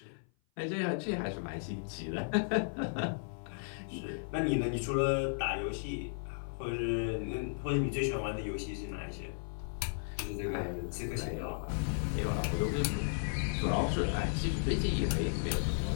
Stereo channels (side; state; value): right; silent; 55 dB below the other